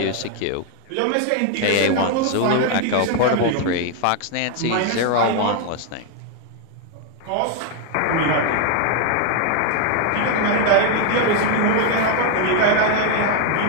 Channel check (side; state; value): both; different; correlation 0.01